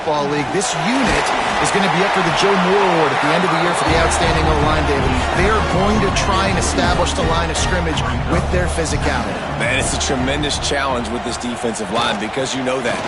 League. This unit is going to be up for the Joe Moore Award at the end of the year for the outstanding O-line, David. They are going to try and establish the line of scrimmage with their physicality. Man, it's a tremendous challenge with this defensive line because you know that.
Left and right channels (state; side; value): identical; both; correlation 1.00